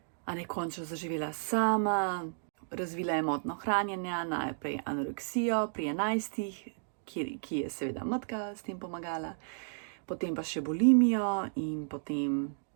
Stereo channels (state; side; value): silent; left; digital silence